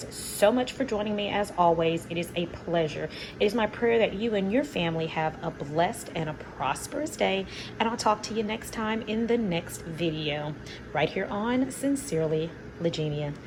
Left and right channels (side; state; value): both; identical; correlation 1.00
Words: so much for joining me as always. It is a pleasure. It is my prayer that you and your family have a blessed and a prosperous day. And I'll talk to you next time in the next video. Right here on Sincerely, Legenia.